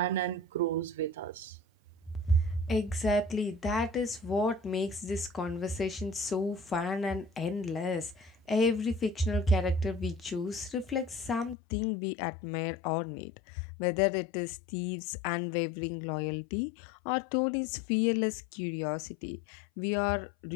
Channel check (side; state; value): right; drops out; at 11.6 s